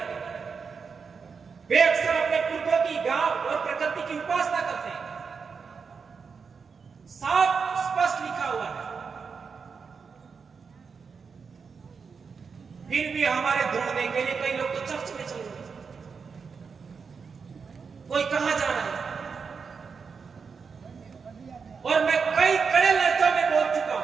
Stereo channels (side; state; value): left; quieter; 5.5 dB